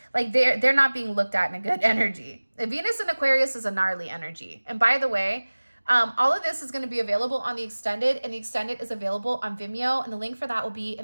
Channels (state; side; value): inverted; both; correlation -1.00